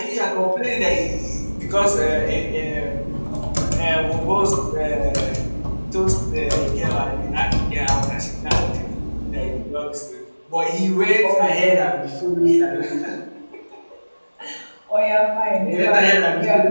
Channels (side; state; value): both; inverted; correlation -1.00